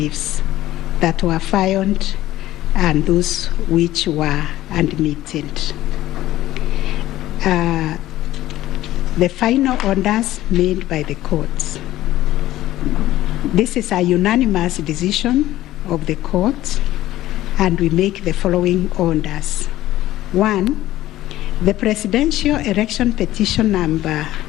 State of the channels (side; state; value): right; quieter; 15.0 dB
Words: that were filed and those which were admitted. The final orders made by the courts. This is a unanimous decision of the court, and we make the following orders. 1, the presidential election petition number